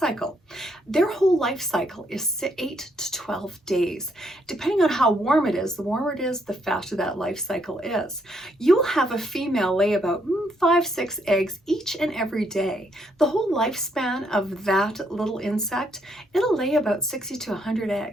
Their whole life cycle is 8 to 12 days. Depending on how warm it is, the warmer it is, the faster that life cycle is. You'll have a female lay about 5-6 eggs each and every day. The whole lifespan of that little insect, it'll lay about 60 to 100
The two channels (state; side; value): normal; both; correlation 0.73